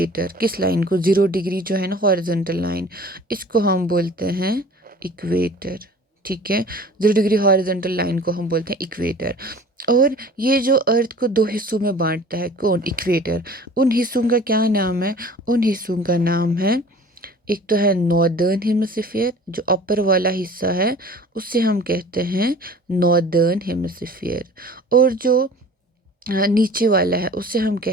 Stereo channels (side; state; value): both; normal; correlation 0.45